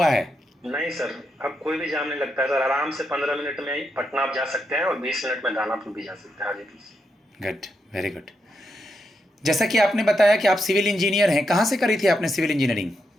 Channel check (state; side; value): normal; both; correlation 0.83